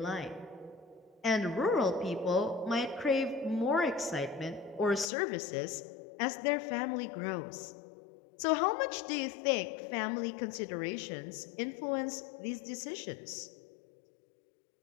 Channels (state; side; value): drops out; right; at 5.1 s